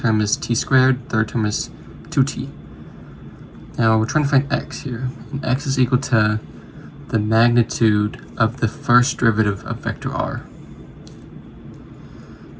is t squared, third term is 2t. Now we're trying to find x here, and x is equal to the magnitude of the first derivative of vector r.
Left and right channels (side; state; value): both; identical; correlation 1.00